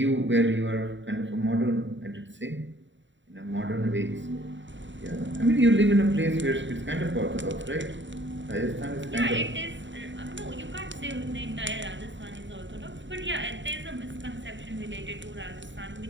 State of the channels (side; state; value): left; late; 0.54 ms